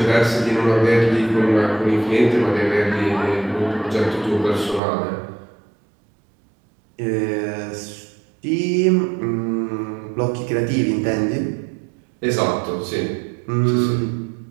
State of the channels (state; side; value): drops out; left; at 4.8 s